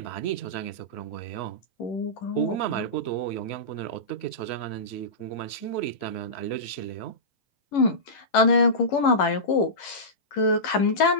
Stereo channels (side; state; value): right; late; 11 ms